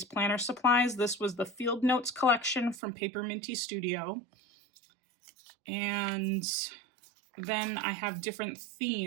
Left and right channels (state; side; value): drops out; left; at 2.8 s